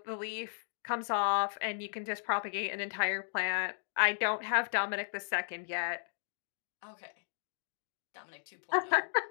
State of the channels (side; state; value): right; silent; digital silence